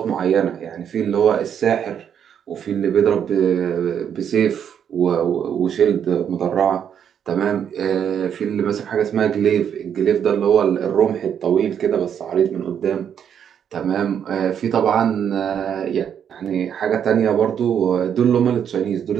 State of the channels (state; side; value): quieter; left; 8.5 dB